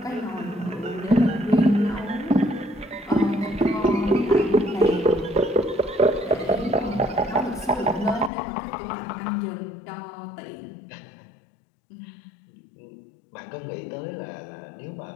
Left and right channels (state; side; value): drops out; right; at 8.3 s